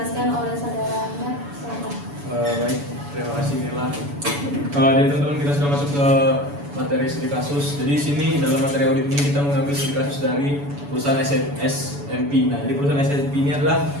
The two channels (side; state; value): left; late; 7.0 ms